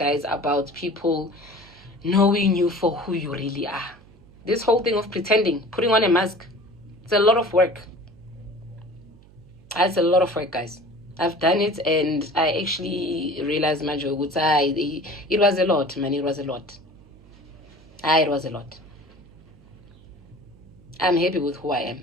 about people knowing you for who you really are. This whole thing of pretending, putting on a mask, it's a lot of work. It's a lot of work, guys. I've done it, and I actually realized, Manjo, it was a lot, man. It was a lot. It was a lot. I'm happy with who I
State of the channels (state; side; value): noise; right; hum, 24 dB below the sound